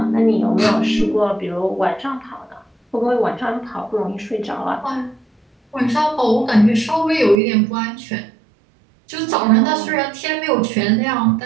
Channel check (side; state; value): left; drops out; at 7.4 s